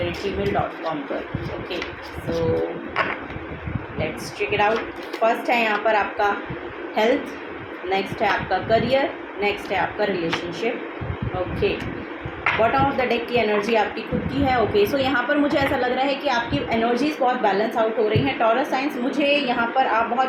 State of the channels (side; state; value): both; identical; correlation 1.00